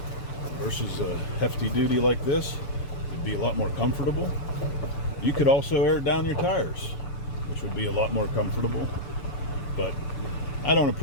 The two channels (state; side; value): late; right; 6.9 ms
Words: versus a hefty duty like this, it'd be a lot more comfortable. You could also air down your tires, which would be a lot more comfortable, but I don't